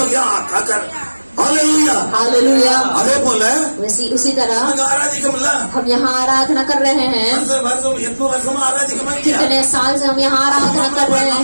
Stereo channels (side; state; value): both; inverted; correlation -1.00